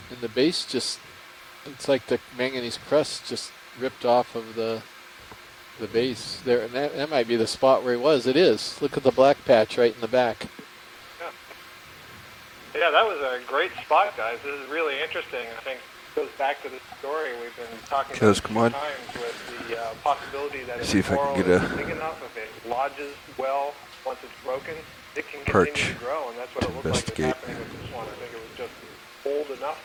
And the base it's like the manganese crust just ripped off of the base there, and that might be the spot where he was. It is. Look at the black patch right in the back. Yeah, that was a great spot, guys. This is really interesting. I think it goes back to the story we've been talking about a few times with the possibility that if the coral is big enough, if it lodges well once it's broken, it can continue to grow, and that's what it looked like is happening with this one. I think it was just old enough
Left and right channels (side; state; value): both; identical; correlation 1.00